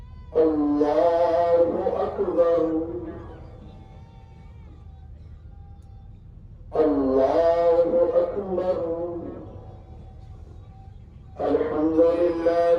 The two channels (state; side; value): identical; both; correlation 1.00